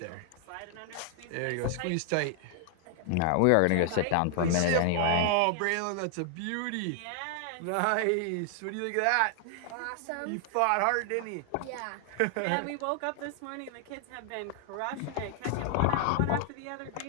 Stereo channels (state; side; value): different; both; correlation 0.00